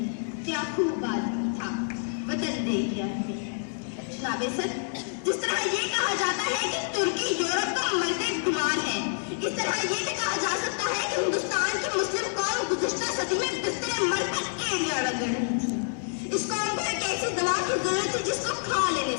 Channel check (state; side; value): silent; right; digital silence